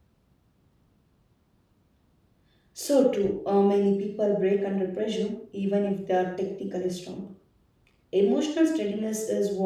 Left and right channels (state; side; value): identical; both; correlation 1.00